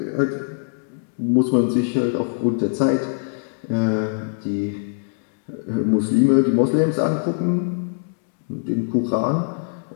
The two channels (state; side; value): silent; right; digital silence